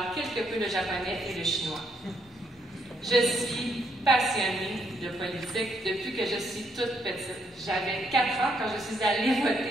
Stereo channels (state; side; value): normal; both; correlation 0.73